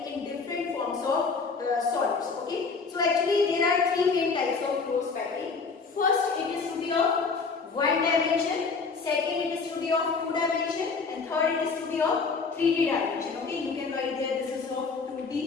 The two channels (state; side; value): quieter; right; 4.7 dB